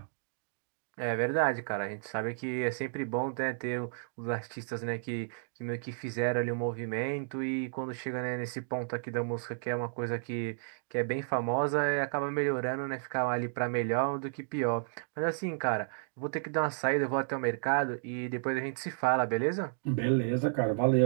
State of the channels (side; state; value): left; silent; digital silence